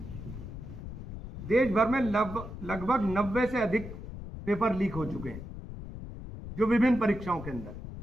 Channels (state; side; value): noise; left; rumble, 10 dB below the sound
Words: देश भर में लगभग 90 से अधिक पेपर लीक हो चुके हैं, जो विभिन्न परीक्षाओं के अंदर।